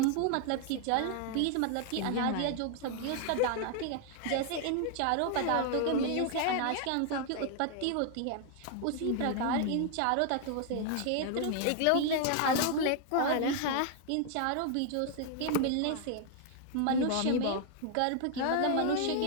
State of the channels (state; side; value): different; both; correlation 0.00